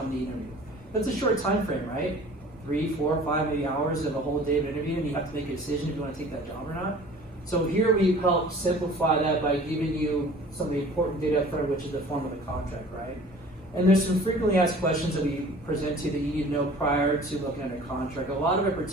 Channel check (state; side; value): normal; both; correlation 0.47